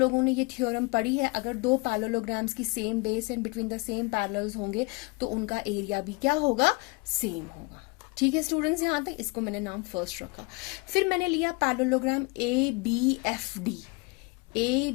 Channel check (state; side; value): quieter; right; 27.8 dB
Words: ने ये थ्योरम पढ़ी है, अगर दो पैरेललोग्राम्स की same base and between the same parallels होंगे तो उनका एरिया भी क्या होगा, सेम होगा। ठीक है स्टूडेंट्स, यहाँ तक इसको मैंने नाम फर्स्ट रखा। फिर मैंने लिया parallelogram A B F D, A